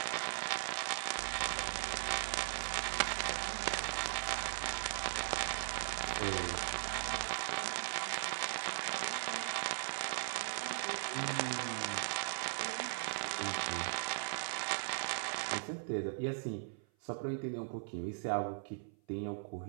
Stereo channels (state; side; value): silent; left; 52 dB below the other